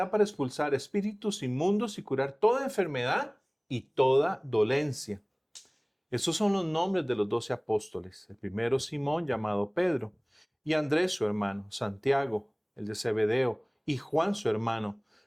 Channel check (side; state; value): both; identical; correlation 1.00